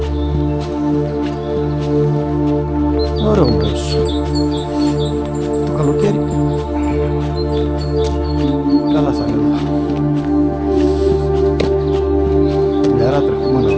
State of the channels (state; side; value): identical; both; correlation 1.00